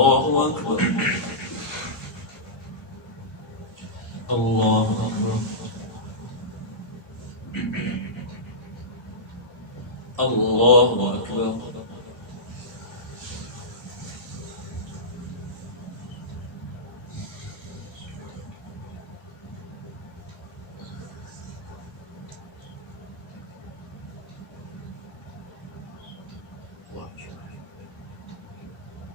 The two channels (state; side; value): normal; both; correlation -0.15